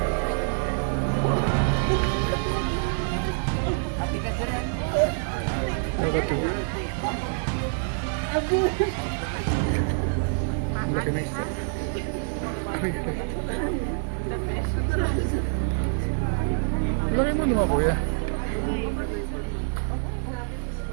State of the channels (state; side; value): silent; left; 60 dB below the other